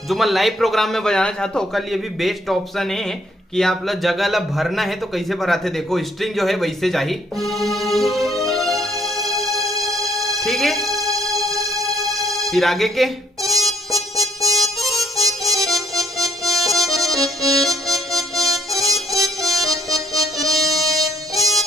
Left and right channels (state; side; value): normal; both; correlation 0.67